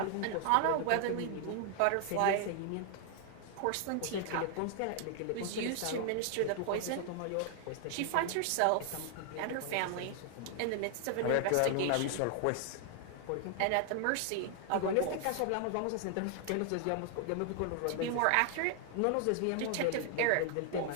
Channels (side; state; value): both; different; correlation 0.00